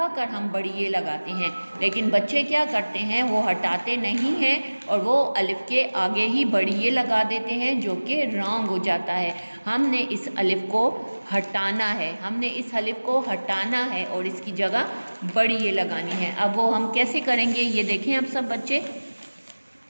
कर हम बड़ी ये लगाते हैं। लेकिन बच्चे क्या करते हैं, वो हटाते नहीं हैं और वो अलिफ के आगे ही बड़ी ये लगा देते हैं, जो कि रॉन्ग हो जाता है। हमने इस अलिफ को हटाना है, हमने इस अलिफ को हटाना है और इसकी जगह बड़ी ये लगानी है। अब वो हम कैसे करेंगे, ये देखें अब सब बच्चे।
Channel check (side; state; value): both; inverted; correlation -1.00